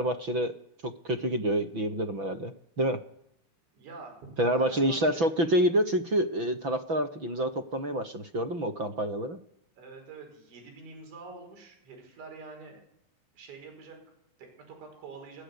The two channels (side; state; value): left; late; 6.0 ms